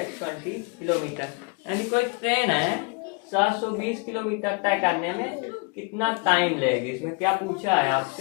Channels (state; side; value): quieter; right; 32.2 dB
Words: kilometre. यानी कोई ट्रेन है 720 किलोमीटर तय करने में कितना टाइम लेगी। इसमें क्या पूछा है